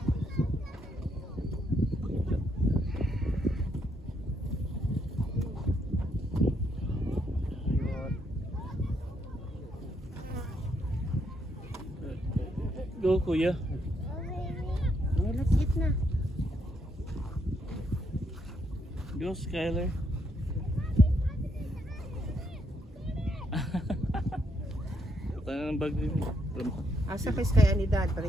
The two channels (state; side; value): normal; both; correlation 0.75